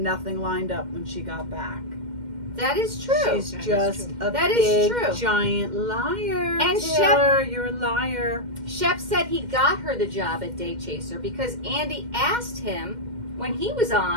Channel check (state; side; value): late; left; 2.1 ms